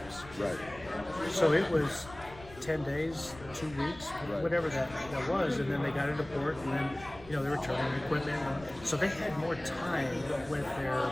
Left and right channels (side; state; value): left; noise; rumble, 18 dB below the sound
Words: Right. So it was 10 days, 2 weeks, whatever that was, and then they got into port, and then they were turning equipment, so they had more time with their